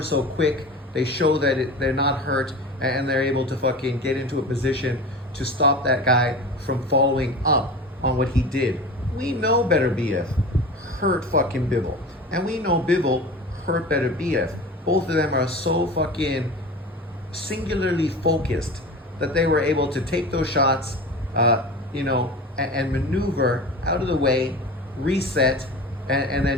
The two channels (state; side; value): normal; both; correlation 0.33